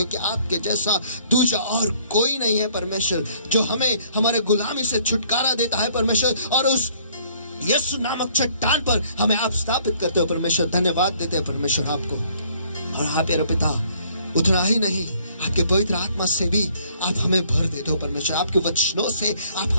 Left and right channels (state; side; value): inverted; both; correlation -0.61